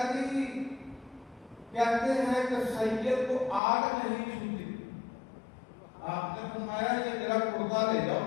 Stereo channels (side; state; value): right; drops out; at 3.6 s